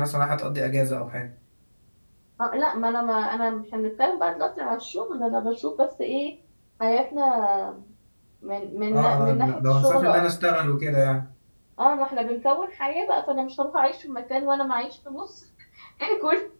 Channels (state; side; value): inverted; both; correlation -1.00